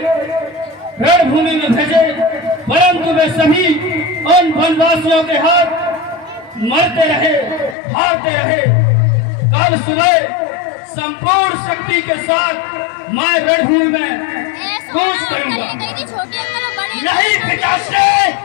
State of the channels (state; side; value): drops out; right; at 7.8 s